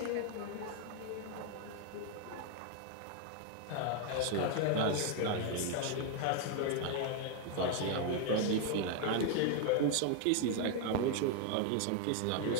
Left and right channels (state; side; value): different; both; correlation 0.01